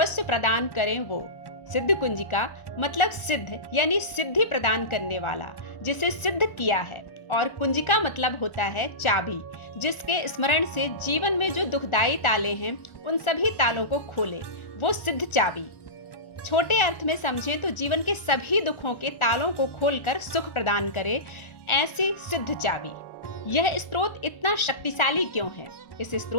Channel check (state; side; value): late; right; 1.4 ms